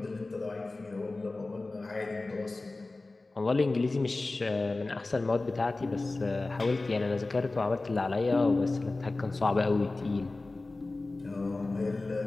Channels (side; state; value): right; quieter; 3.2 dB